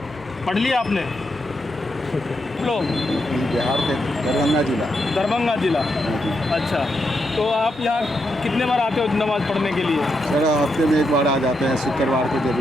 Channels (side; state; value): both; normal; correlation 0.83